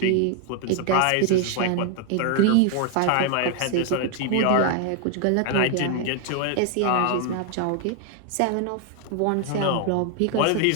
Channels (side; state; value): both; different; correlation 0.00